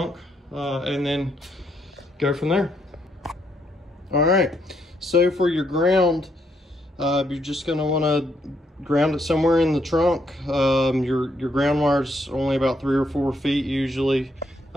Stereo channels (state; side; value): normal; both; correlation 0.74